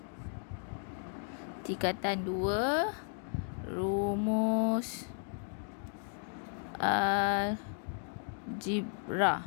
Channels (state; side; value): silent; right; 55 dB below the other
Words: tingkatan 2, rumus algebra.